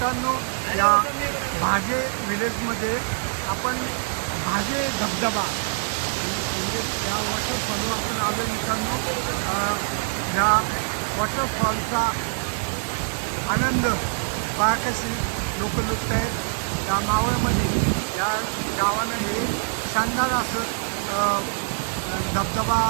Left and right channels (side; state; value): left; silent; 62 dB below the other